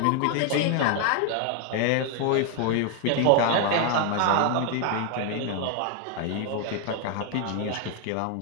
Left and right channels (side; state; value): both; different; correlation 0.01